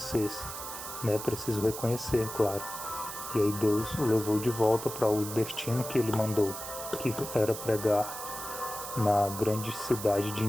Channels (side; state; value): right; noise; hiss, 9 dB below the sound